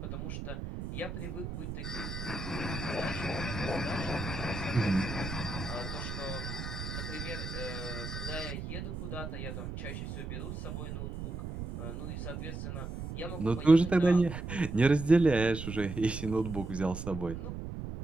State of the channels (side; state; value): right; noise; rumble, 6 dB below the sound